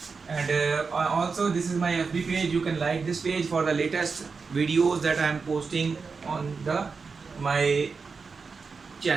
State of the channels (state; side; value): quieter; left; 4.9 dB